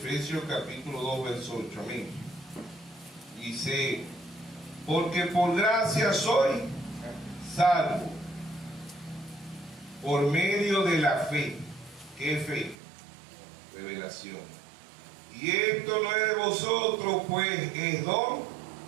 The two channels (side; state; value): left; drops out; at 12.8 s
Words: capítulo 2, verso 8. Amén. Dice: porque por gracia soy salvo por medio de la fe. ¿Qué fe? Revelación. Y esto no es de vosotros, pues es don